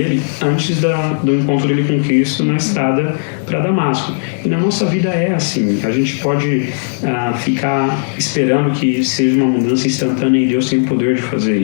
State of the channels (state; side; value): silent; right; digital silence